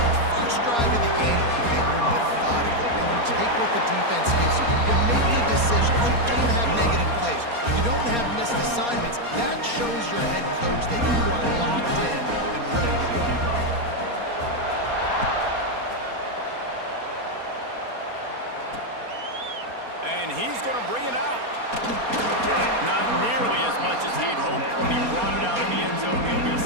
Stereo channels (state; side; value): late; left; 4.2 ms